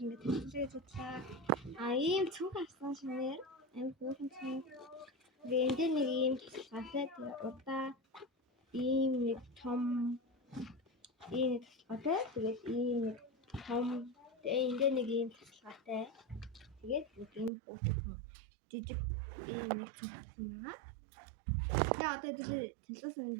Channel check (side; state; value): left; drops out; at 17.5 s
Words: ингээд хичээлээ судлаа. Ийм цүнх авсан шинээр амин хөөрхөн цүнх. Тэгээд энэ нэг ийм тусгаатай удаа ийм нэг том ийм нэг тусгаатай тэгээд ийм нэг том энэ нэг ийм тусгаатай. Тэгээд ийм хөөрхөн жижиг ийм нэг цүнх байгаа. Тэгээ одоо тэлээс